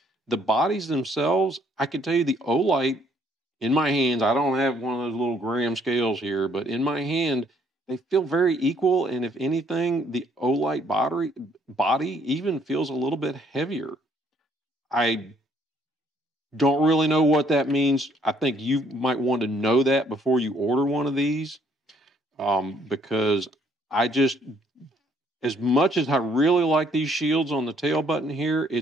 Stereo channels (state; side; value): normal; both; correlation 0.66